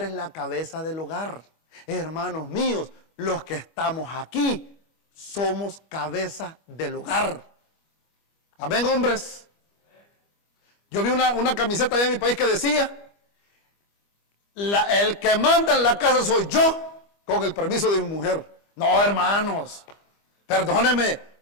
la cabeza del hogar. Hermanos míos, los que estamos aquí somos cabeza del hogar. Amén, hombres. Yo vi una camiseta allá en mi país que decía, el que manda en la casa soy yo, con el permiso de mi mujer. No, hermanos, perdóneme,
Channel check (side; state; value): right; late; 25 ms